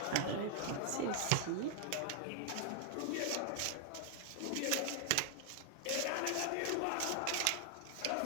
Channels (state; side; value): different; both; correlation 0.00